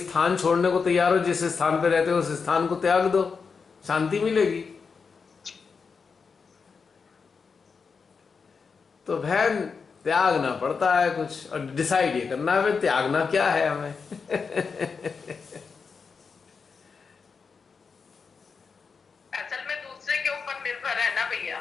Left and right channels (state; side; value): quieter; right; 5.3 dB